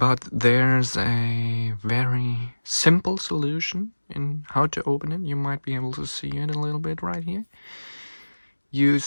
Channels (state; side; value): inverted; both; correlation -1.00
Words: there's a very simple solution in how to open it. You might be able to see it a little bit right here. You